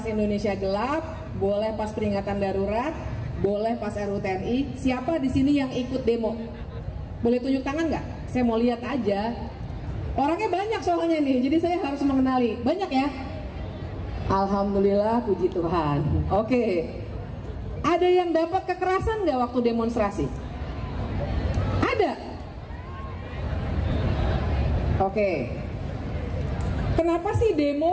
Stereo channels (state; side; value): identical; both; correlation 1.00